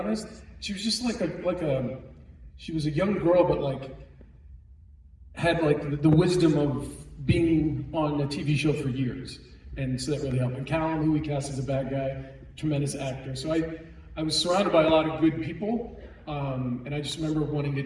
She was just she was a young girl, but had the wisdom of being on a TV show for years, and so that really helped. And Callum, who we cast as a bad guy, tremendous actor. So I was surrounded by a lot of good people, and I just remember wanting to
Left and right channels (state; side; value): identical; both; correlation 1.00